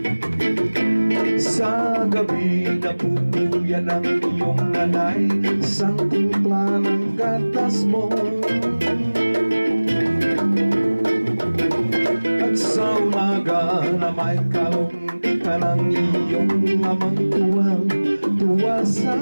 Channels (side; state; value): both; inverted; correlation -1.00